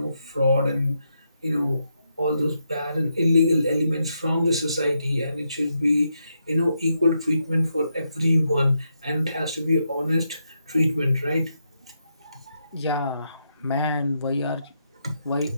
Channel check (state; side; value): inverted; both; correlation -0.82